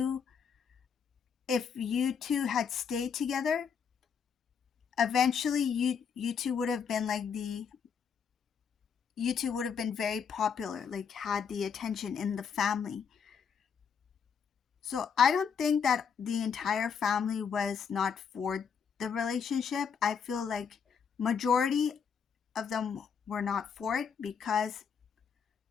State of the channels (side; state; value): right; quieter; 6.8 dB